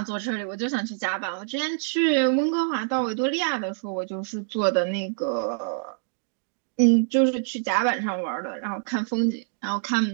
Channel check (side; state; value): left; silent; digital silence